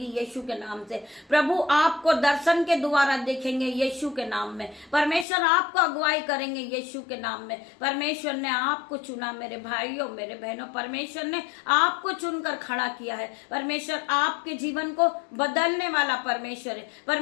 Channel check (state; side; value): drops out; right; at 5.2 s